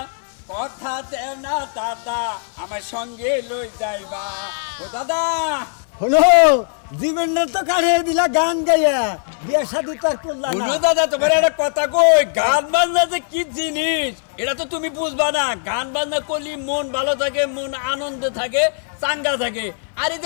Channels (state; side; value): silent; right; 57 dB below the other